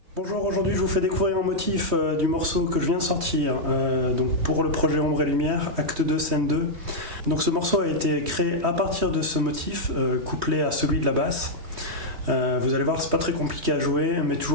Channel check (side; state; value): left; late; 3.1 ms